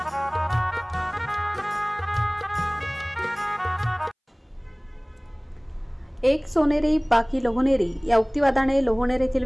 एक सोनेरी बाकी लोहनेरी या उक्तिवादाने लोहनेर येथील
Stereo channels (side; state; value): both; identical; correlation 1.00